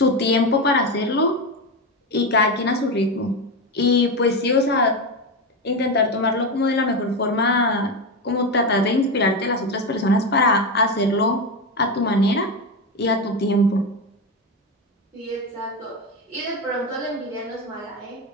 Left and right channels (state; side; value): normal; both; correlation 0.15